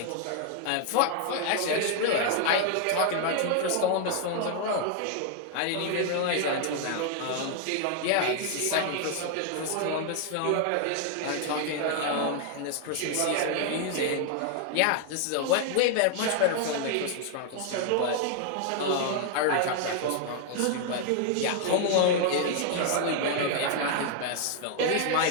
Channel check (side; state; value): both; different; correlation 0.00